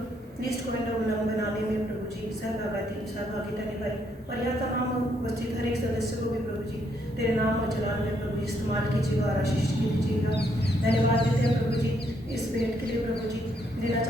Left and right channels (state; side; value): normal; both; correlation 0.73